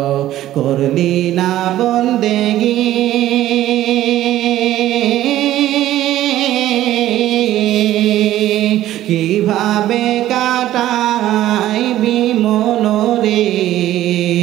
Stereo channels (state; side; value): quieter; left; 13.8 dB